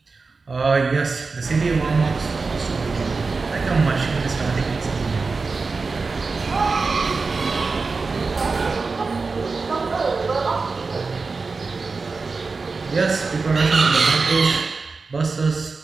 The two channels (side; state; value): left; quieter; 4.3 dB